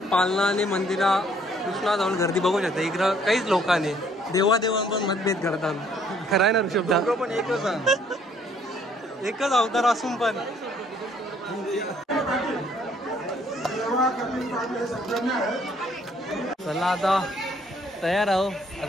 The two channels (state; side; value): normal; both; correlation 0.63